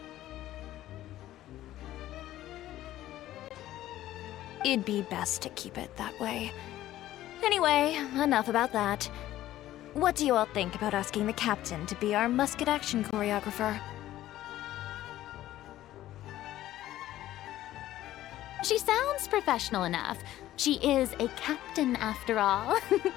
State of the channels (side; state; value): right; quieter; 14.1 dB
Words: It'd be best to keep it that way. Anyway, enough about that. What do you all think about asking the captain to be our musket action choreographer? She sounds professional enough. She is a captain after all.